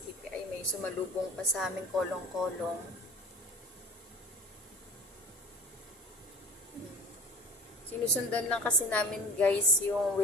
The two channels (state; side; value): normal; both; correlation 0.41